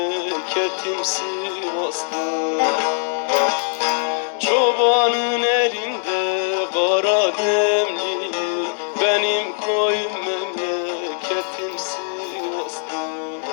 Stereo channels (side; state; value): right; silent; 63 dB below the other